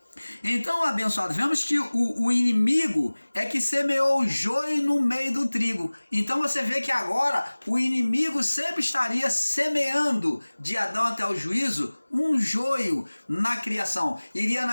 Então, abençoado, vemos que o inimigo é que semeou o joio no meio do trigo. Então você vê que agora o inimigo sempre estaria semeando de Adão até o juízo um joio na criação. Iria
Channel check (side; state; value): both; inverted; correlation -1.00